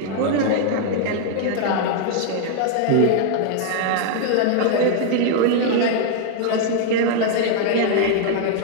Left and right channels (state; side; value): different; both; correlation 0.00